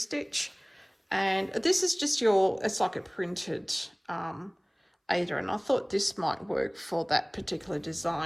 And this is just it's like a printed Aida, and I thought this might work for that particular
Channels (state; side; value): identical; both; correlation 1.00